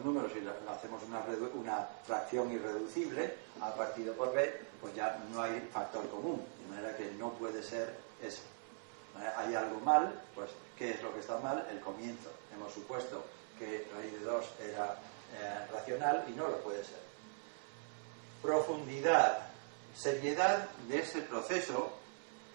y hacemos una fracción irreducible, a partido por b, pues ya no hay factor común, de manera que no puede ser eso. Hay algo mal, pues ¿qué es lo que está mal? El comienzo. Hemos supuesto que raíz de 2 era racional y no lo puede ser. Profundidad, seriedad de ese proceso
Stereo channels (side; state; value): left; silent; digital silence